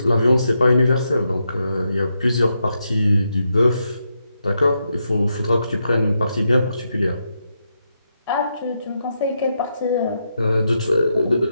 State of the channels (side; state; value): both; inverted; correlation -0.83